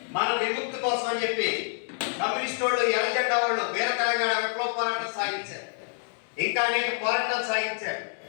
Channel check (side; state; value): right; silent; 60 dB below the other